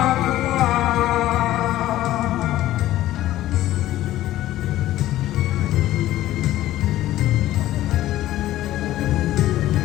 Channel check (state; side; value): quieter; right; 14.5 dB